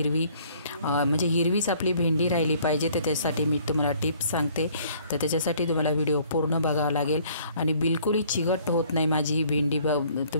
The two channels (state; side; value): inverted; both; correlation -0.59